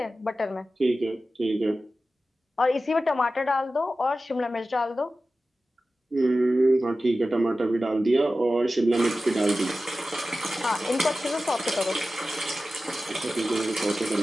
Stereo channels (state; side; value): normal; both; correlation 0.94